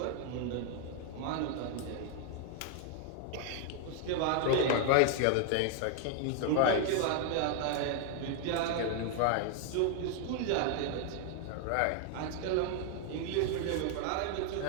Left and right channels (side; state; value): both; different; correlation 0.00